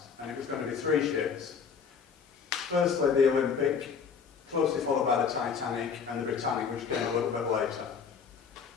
And it was going to be three ships. Firstly, the Olympic, closely followed by the Titanic and the Britannic, which came a little bit later.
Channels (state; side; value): quieter; right; 6.3 dB